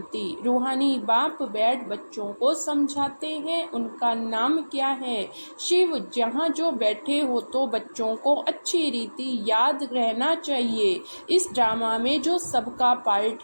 रूहानी बाप बैठ बच्चों को समझाते हैं, उनका नाम क्या है? शिव। जहाँ जो बैठे हो तो बच्चों को अच्छी रीति याद रहना चाहिए। इस ड्रामा में जो सबका पार्ट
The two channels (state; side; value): inverted; both; correlation -1.00